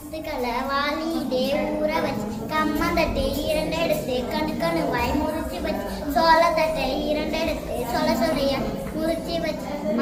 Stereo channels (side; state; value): both; identical; correlation 1.00